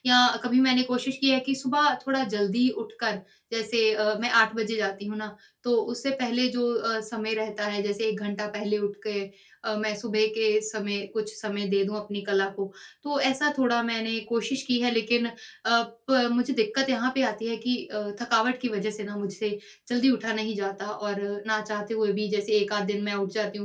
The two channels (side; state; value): both; identical; correlation 1.00